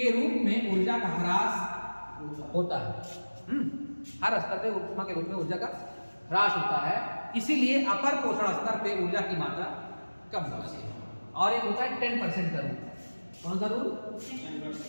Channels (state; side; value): inverted; both; correlation -1.00